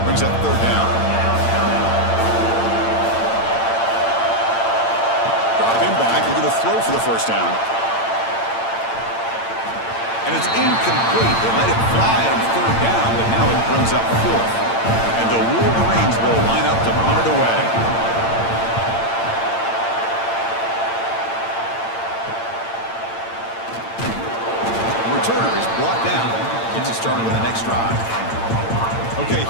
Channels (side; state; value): right; late; 8.8 ms